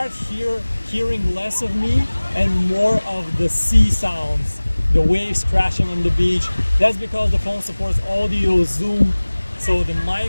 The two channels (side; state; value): both; inverted; correlation -1.00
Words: hearing less of me and more of the sea sounds, the waves crashing on the beach. That's because the phone supports audio zoom, so the